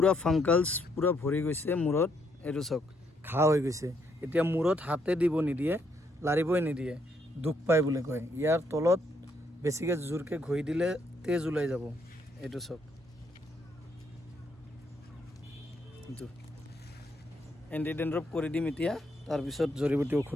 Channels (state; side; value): normal; both; correlation 0.73